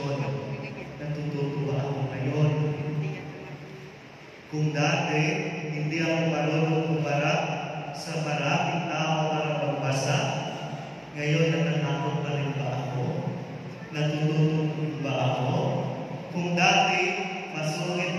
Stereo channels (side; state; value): both; identical; correlation 1.00